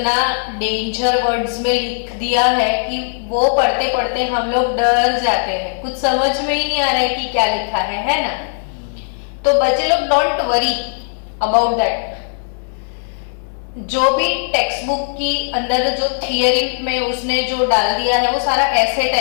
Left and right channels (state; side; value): silent; right; digital silence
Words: डेंजर वर्ड्स में लिख दिया है कि वो पढ़ते पढ़ते हम लोग डर जाते हैं, कुछ समझ में ही नहीं आ रहा है कि क्या लिखा है ना। तो बच्चे लोग डोंट वरी अबाउट दैट। जो भी टेक्स्ट बुक की अंदर जो थियरी में उसने जो डाल दिया है वो सारा ऐसे